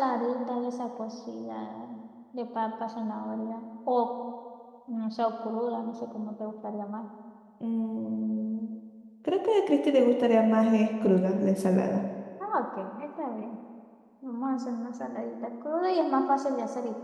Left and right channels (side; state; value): both; identical; correlation 1.00